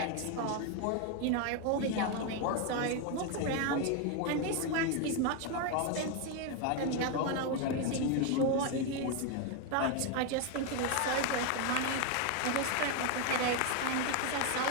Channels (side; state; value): both; different; correlation 0.01